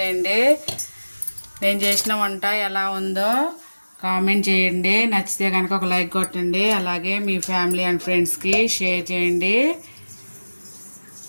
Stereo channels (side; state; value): both; inverted; correlation -1.00